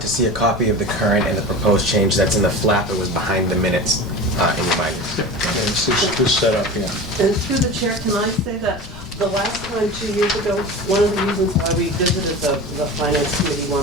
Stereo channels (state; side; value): noise; left; rumble, 16 dB below the sound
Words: to see a copy of the current and the proposed change, that's in the flap. It was behind the minutes in your binder. It's this setup here. And through the chair, can I say that the last time, 2 years ago, one of the reasons why we visited the finance committee